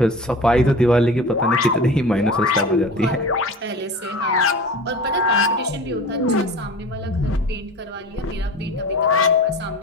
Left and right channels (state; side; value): normal; both; correlation 0.36